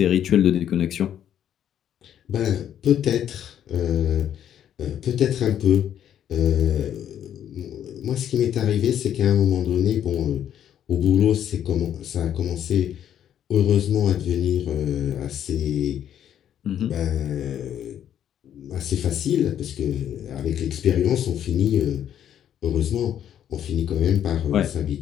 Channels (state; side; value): quieter; right; 10.1 dB